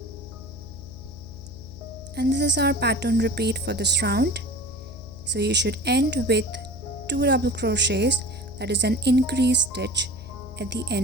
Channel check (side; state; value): left; noise; hum, 15 dB below the sound